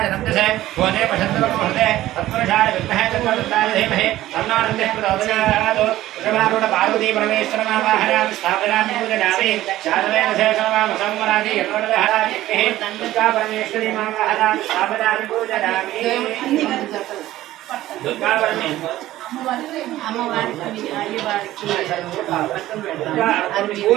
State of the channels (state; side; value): quieter; left; 15.0 dB